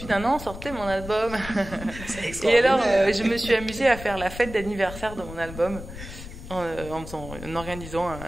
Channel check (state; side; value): noise; left; rumble, 12 dB below the sound